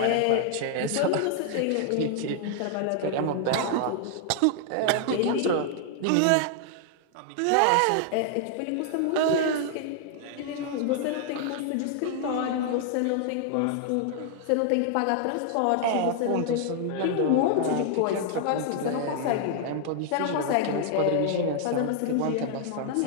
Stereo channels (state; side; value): different; both; correlation 0.00